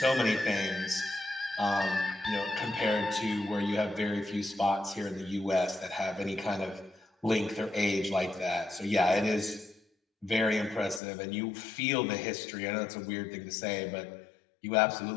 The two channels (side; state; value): right; drops out; at 11.0 s